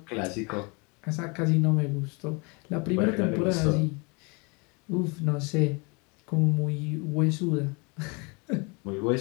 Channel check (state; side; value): quieter; right; 30.3 dB